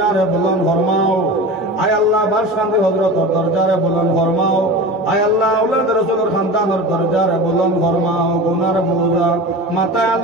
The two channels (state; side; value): normal; both; correlation 0.31